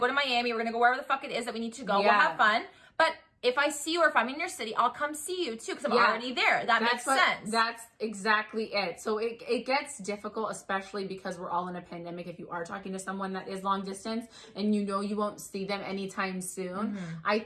Miami. We're going to go wherever the fuck it is that we need to go. We'll have fun. But if I see you or if I'm in your city, I'll come see you too, because I'm already there. That makes sense. That's exactly it. So it gets difficult, especially because we're all in a pandemic. If you are talking to someone that is long distance and you know you won't see them anytime soon, I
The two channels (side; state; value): both; identical; correlation 1.00